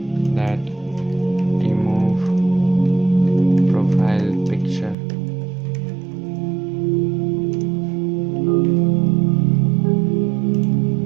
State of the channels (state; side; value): drops out; left; at 5.0 s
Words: that remove profile picture.